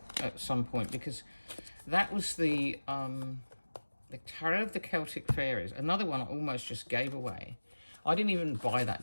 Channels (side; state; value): both; inverted; correlation -1.00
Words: at some point, because that was the Tarot of the Celtic Fairies. Another one I almost just gave away. I didn't even buy